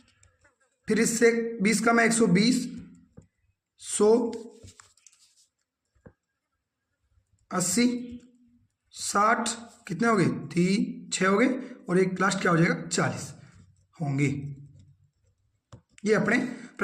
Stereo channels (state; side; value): identical; both; correlation 1.00